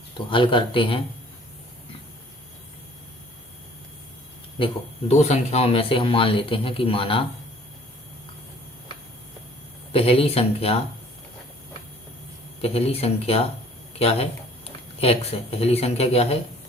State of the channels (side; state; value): both; normal; correlation 0.54